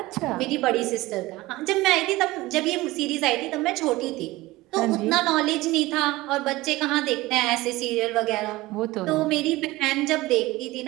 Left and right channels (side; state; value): left; quieter; 19.4 dB